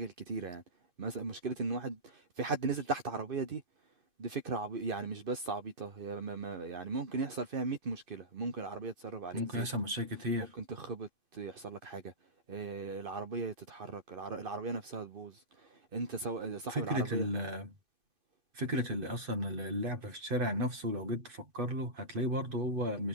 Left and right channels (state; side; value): late; left; 2.5 ms